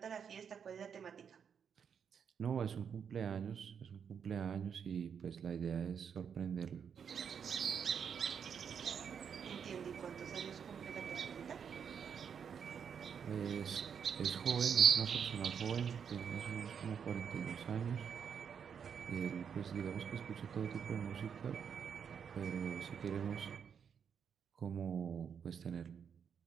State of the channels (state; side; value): quieter; left; 7.3 dB